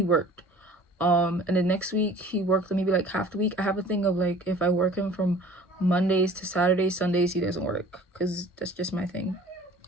worked, and the next week he worked maybe like half the week. I have a thing of like, if I work him from Mondays to Saturdays, Sundays he doesn't work, because that's just my thing.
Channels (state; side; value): normal; both; correlation 0.48